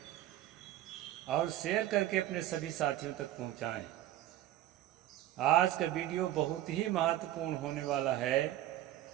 और शेयर करके अपने सभी साथियों तक पहुंचाएं। आज का वीडियो बहुत ही महत्वपूर्ण होने वाला है।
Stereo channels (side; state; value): left; quieter; 13.5 dB